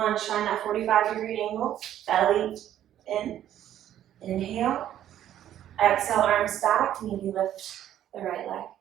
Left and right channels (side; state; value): left; quieter; 11.4 dB